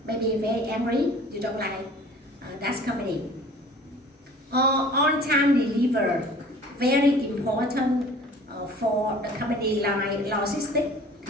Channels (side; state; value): both; normal; correlation 0.47